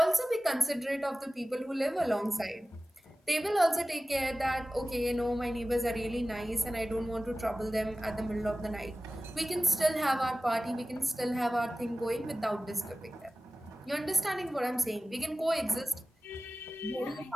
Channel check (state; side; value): normal; both; correlation 0.95